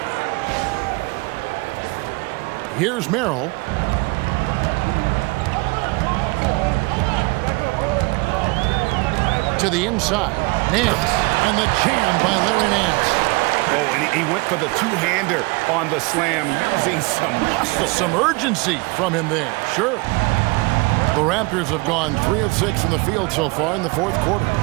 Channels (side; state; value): left; quieter; 26.6 dB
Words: Here's Merrill. To the inside. Nance. And the jam by Larry Nance. Oh, and he went for the two-hander on the slam using some muscle. Some urgency from him there. Sure. The Raptors have gone 3 of 6 from the field so far in the fourth quarter.